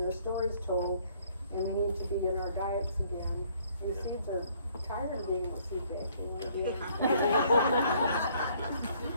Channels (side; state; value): both; inverted; correlation -0.63